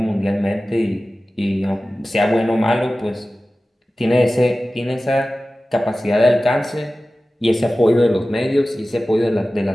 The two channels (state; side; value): normal; both; correlation 0.96